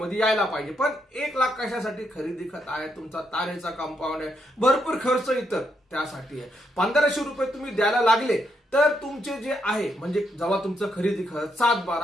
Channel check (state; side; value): normal; both; correlation 0.78